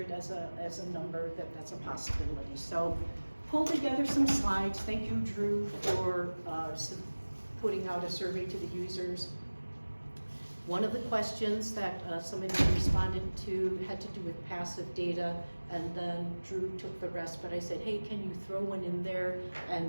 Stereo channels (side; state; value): both; inverted; correlation -1.00